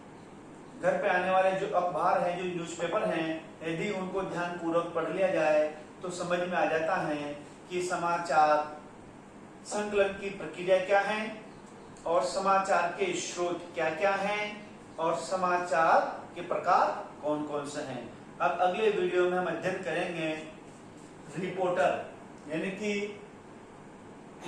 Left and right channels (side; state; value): both; identical; correlation 1.00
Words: घर पे आने वाले जो अखबार हैं, जो न्यूज़पेपर हैं, यदि उनको ध्यान पूर्वक पढ़ लिया जाए तो समझ में आ जाता है कि समाचार संकलन की प्रक्रिया क्या है और समाचार के स्रोत क्या क्या हैं और समाचार के प्रकार कौन कौन से हैं। अब अगले वीडियो में हम अध्ययन करेंगे रिपोर्टर यानी कि